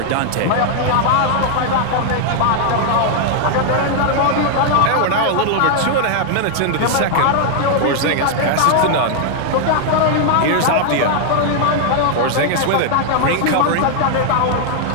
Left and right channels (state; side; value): different; both; correlation 0.00